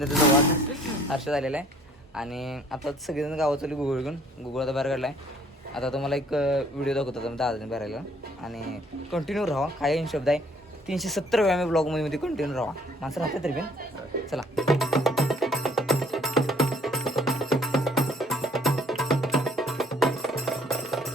वाघ हर्ष झालेला आहे. आणि आता सगळेजण गावात चालू गुगल घेऊन. गुगल आता बाहेर काढला आहे. आता तुम्हाला एक व्हिडिओ दाखवतो दादाने बाहेर आला. आणि कंटिन्यू राहा. काय शब्द आहे 370 वेळा मी ब्लॉगमध्ये कंटिन्यू राहा. माणसं राहते तरी पण चला.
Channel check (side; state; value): both; normal; correlation 0.60